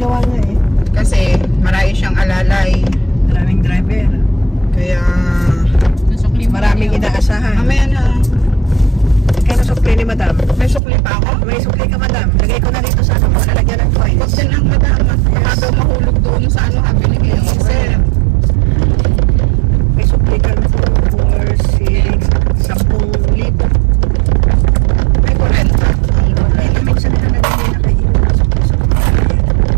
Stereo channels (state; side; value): drops out; left; at 10.8 s